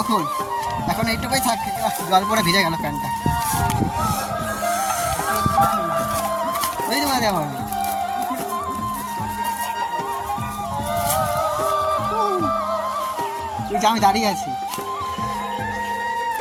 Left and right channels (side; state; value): both; identical; correlation 1.00